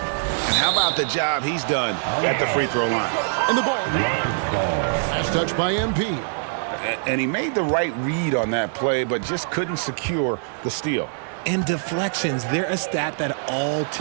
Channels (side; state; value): left; silent; 63 dB below the other